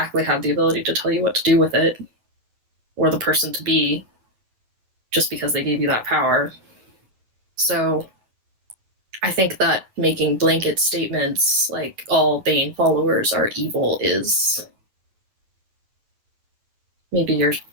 have the ability to tell you what to do with it or the person to be just because they gave you that power. So I think that making blanket statements like all Bane followers are evil is maybe you're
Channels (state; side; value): late; left; 9.6 ms